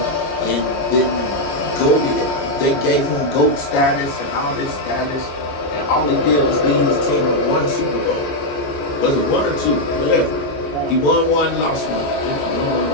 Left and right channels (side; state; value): right; late; 14 ms